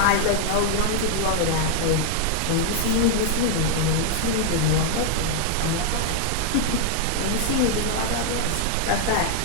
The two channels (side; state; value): both; different; correlation 0.00